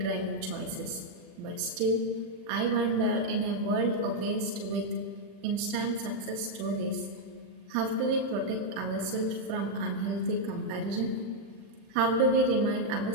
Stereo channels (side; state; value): left; late; 38 ms